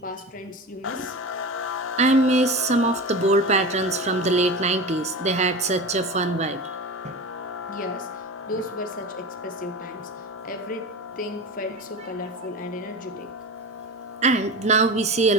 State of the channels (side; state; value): both; normal; correlation 0.28